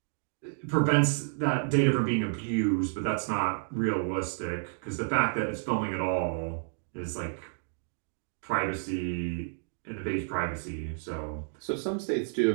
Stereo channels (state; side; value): silent; left; digital silence